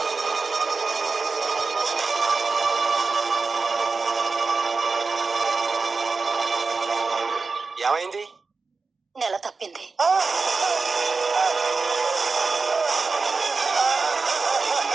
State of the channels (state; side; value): quieter; left; 4.3 dB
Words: ఏమైంది? నెల తప్పింది.